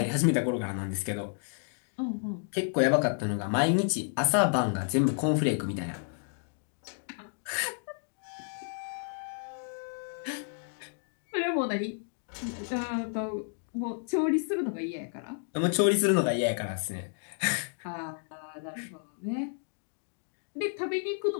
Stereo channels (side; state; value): right; silent; 57 dB below the other